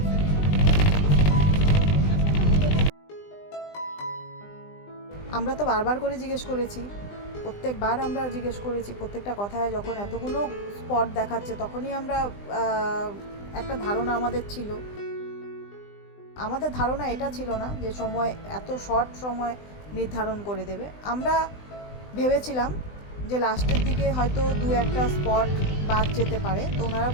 আমরা তো বারবার করে জিজ্ঞেস করেছি, প্রত্যেকবার আমরা জিজ্ঞেস করেছি, প্রত্যেকটা কথায় যখন এতগুলো স্পট দেখাচ্ছে তখনই আমরা একটা ধারণা আমাদের ছিল। আমাদের ধারণা এটা ছিল না যে সময় এত শর্ট সময় নির্ধারণ করে দেবে। আমরা ভেবেছিলাম যে লাস্টের দিকে হয়তো 2-1টা স্পট বাদ যেতে পারে। তো ওনারা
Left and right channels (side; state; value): right; late; 20 ms